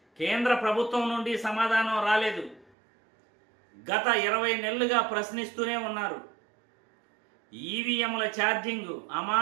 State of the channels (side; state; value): left; drops out; at 2.7 s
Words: కేంద్ర ప్రభుత్వం నుండి సమాధానం రాలేదు. గత 20 నెలలుగా ప్రశ్నిస్తూనే ఉన్నారు. ఈవీఎంల ఛార్జింగ్